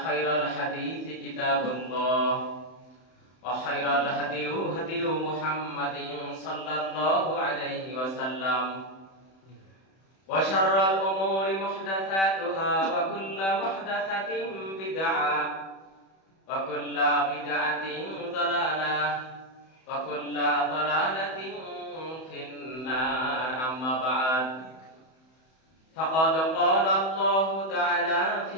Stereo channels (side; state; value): right; late; 31 ms